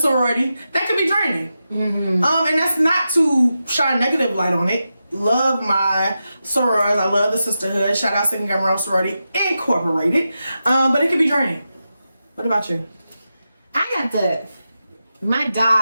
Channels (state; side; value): inverted; both; correlation -0.90